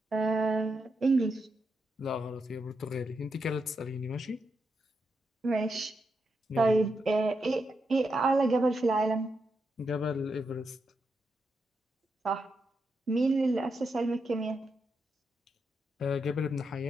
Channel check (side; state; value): both; normal; correlation 0.84